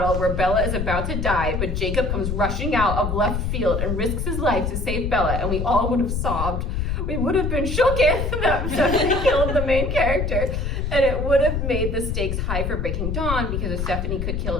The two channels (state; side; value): noise; left; rumble, 1 dB below the sound